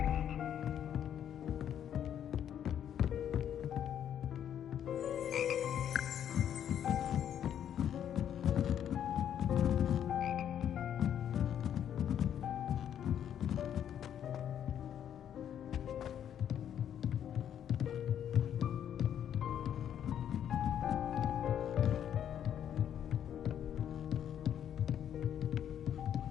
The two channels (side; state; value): right; quieter; 9.6 dB